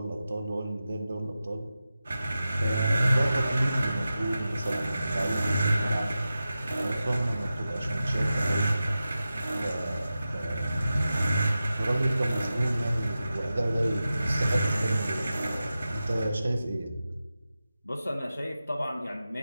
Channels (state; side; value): inverted; both; correlation -0.93